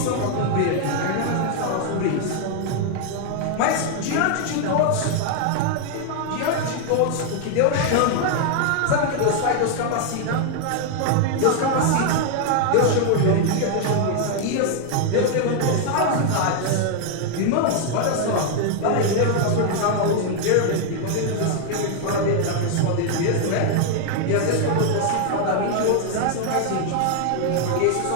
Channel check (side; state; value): both; different; correlation 0.00